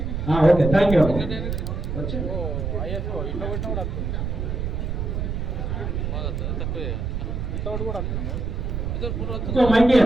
Okay, thank you. ఇంకో మైక్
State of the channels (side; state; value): right; noise; rumble, 2 dB below the sound